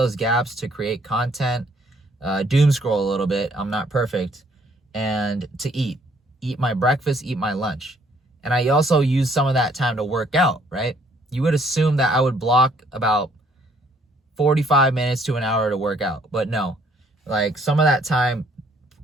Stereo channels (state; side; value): normal; both; correlation 0.64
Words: gaps to create content, doom scroll a little bit. I'm not perfect. And to eat. Eat my breakfast, eat my lunch. And I also use some of that time to work out, right? You would assume that I would block about 45 minutes to an hour to work out. But no. Like some of that time,